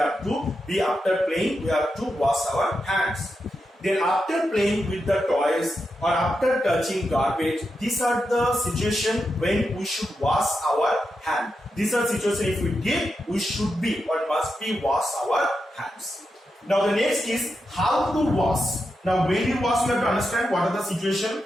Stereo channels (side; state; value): both; normal; correlation 0.87